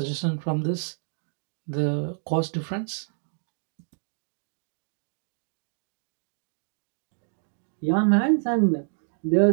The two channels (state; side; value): silent; left; digital silence